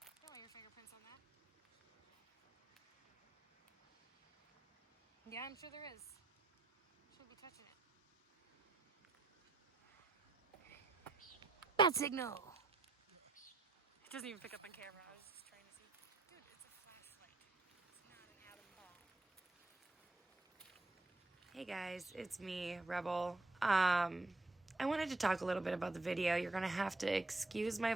Don't leave your fingerprints on that. Yeah, I'm sure there is. Shouldn't be touching it. Bad signal! It doesn't even pick up on camera. I was just trying to see. Dude, it's a flashlight. It's not an atom bomb. Hey guys, it's me, Rebel. I wanted to talk a little bit about the video. You're gonna have to excuse my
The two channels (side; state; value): left; quieter; 3.1 dB